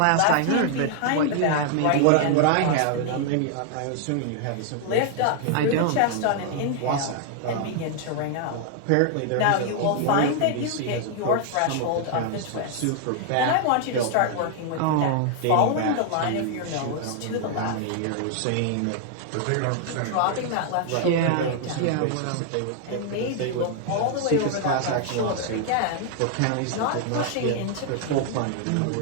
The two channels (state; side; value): different; both; correlation 0.00